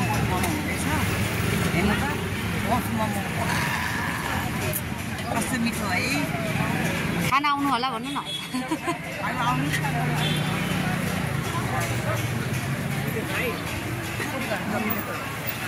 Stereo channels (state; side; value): identical; both; correlation 1.00